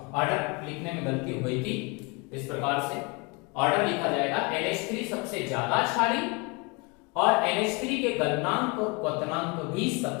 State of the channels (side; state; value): right; quieter; 28.9 dB